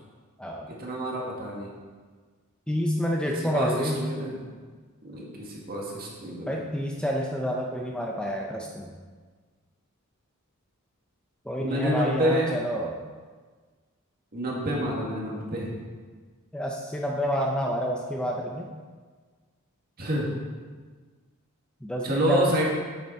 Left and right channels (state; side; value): normal; both; correlation 0.51